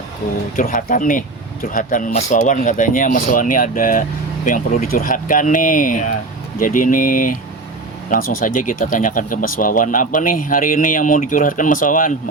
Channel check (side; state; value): left; quieter; 3.4 dB